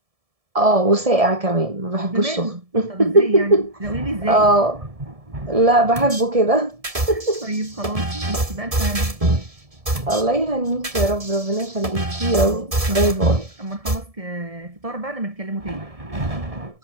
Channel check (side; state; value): left; late; 1.7 ms